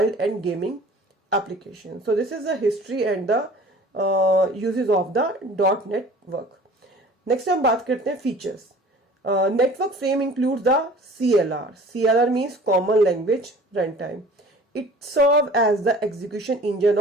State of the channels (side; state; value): both; normal; correlation 0.46